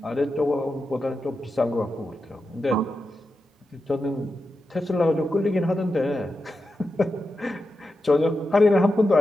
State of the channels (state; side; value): normal; both; correlation 0.90